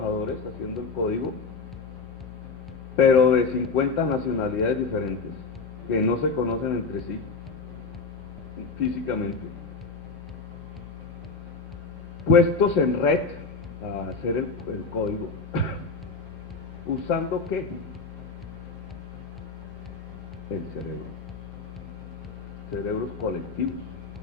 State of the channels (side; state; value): right; quieter; 4.4 dB